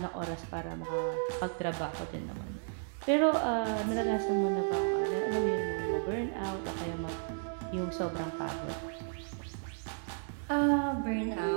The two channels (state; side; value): silent; left; digital silence